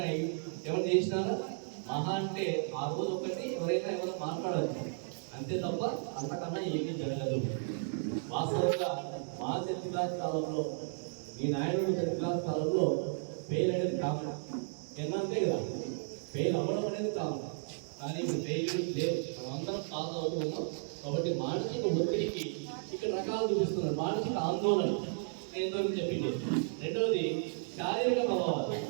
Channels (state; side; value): silent; left; digital silence